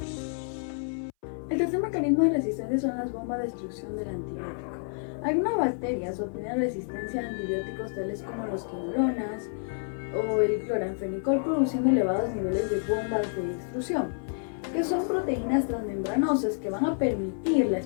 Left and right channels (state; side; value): silent; right; 59 dB below the other